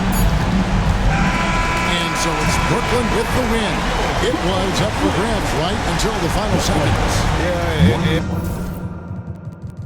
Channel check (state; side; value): identical; both; correlation 1.00